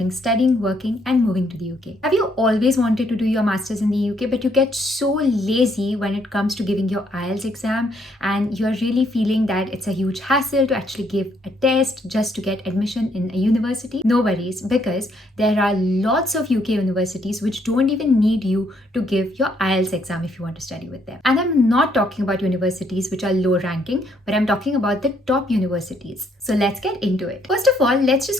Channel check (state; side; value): normal; both; correlation 0.70